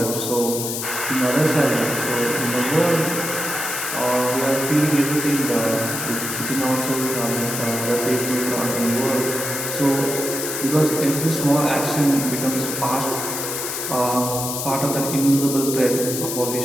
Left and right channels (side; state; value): left; noise; hiss, 4 dB below the sound